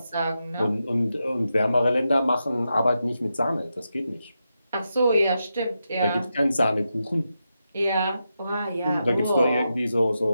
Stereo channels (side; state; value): both; inverted; correlation -0.87